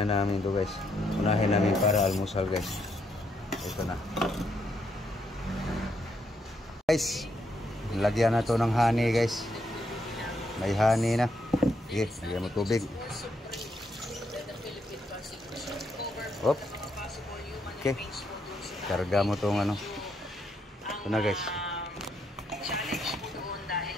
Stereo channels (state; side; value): normal; both; correlation 0.76